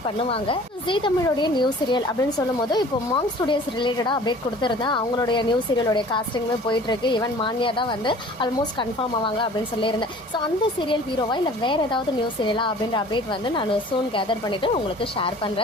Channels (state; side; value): normal; both; correlation 0.47